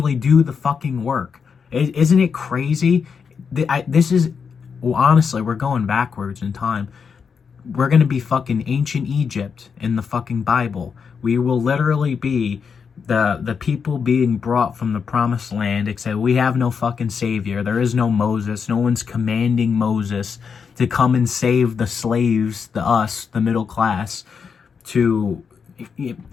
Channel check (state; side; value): quieter; right; 6.1 dB